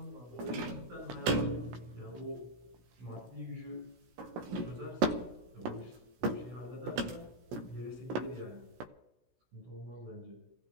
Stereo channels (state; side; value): late; left; 16 ms